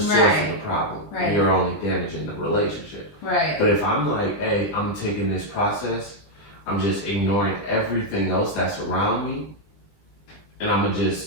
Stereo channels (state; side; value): late; right; 20 ms